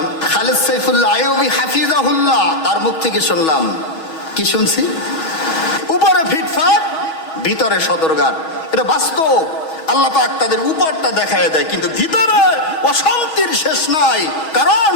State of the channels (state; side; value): late; right; 6.3 ms